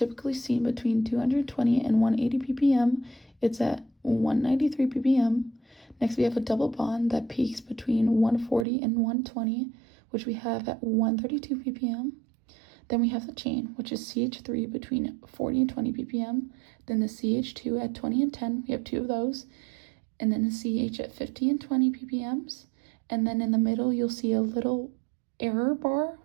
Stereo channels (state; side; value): drops out; left; at 8.7 s